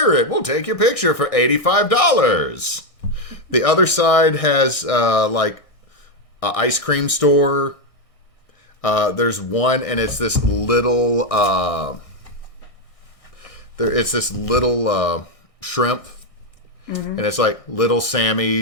We'll take your picture for $85. The other side has like an ice cream store. There's one, and it's this little it's this little shrimp, and it's like Little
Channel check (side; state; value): right; late; 1.6 ms